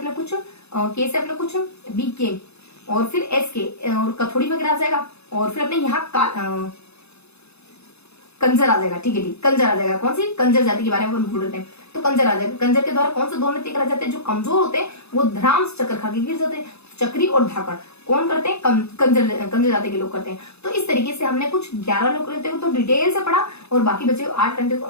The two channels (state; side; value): late; right; 0.80 ms